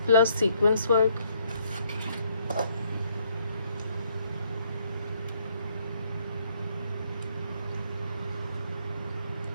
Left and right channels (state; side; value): inverted; both; correlation -0.69